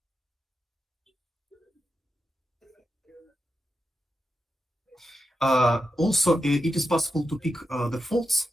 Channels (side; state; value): both; normal; correlation 0.89